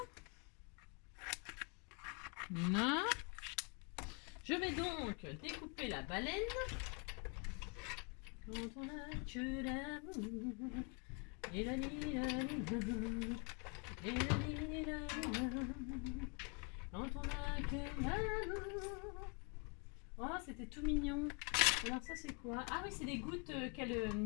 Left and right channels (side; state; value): right; quieter; 35.7 dB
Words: Voilà. Je vais donc découper la baleine. Quand on a que l'amour, et la quand on a que l'amour. Oh, c'était tout mignon. Alors ça c'est quoi? Ah oui, c'est des gouttes